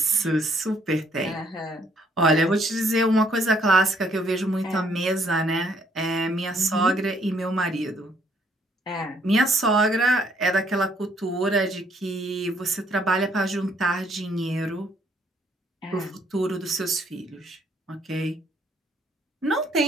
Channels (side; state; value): both; normal; correlation 0.66